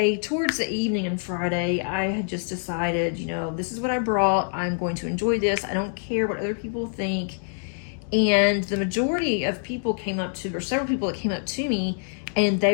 towards the evening on Friday, I had just decided, this is what I brought. I'm going to enjoy this. I don't care what other people think. And the majority of people came up to, or several people that came up to me, and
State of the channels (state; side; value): silent; right; digital silence